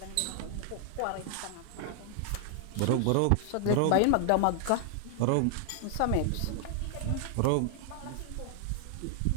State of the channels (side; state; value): both; different; correlation 0.00